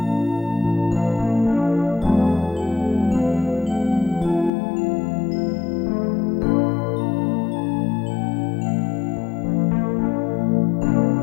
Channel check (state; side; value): drops out; right; at 4.5 s